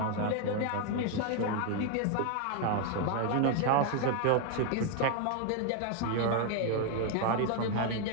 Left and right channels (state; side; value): different; both; correlation 0.01